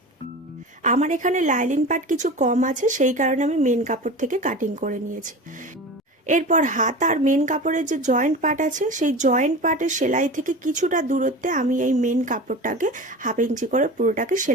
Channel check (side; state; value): both; normal; correlation 0.32